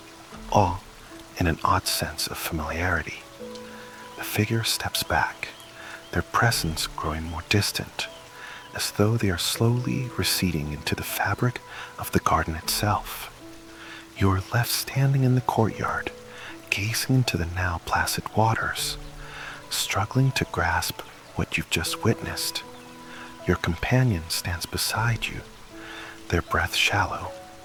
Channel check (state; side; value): identical; both; correlation 1.00